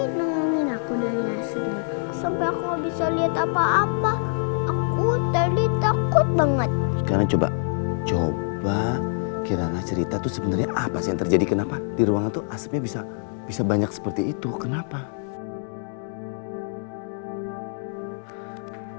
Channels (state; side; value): silent; right; digital silence